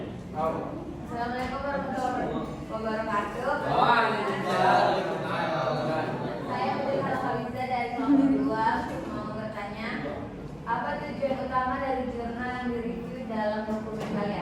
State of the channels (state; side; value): identical; both; correlation 1.00